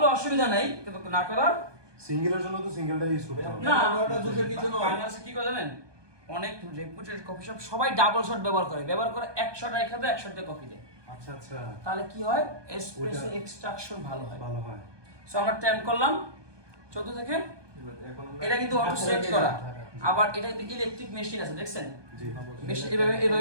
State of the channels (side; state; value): left; late; 1.2 ms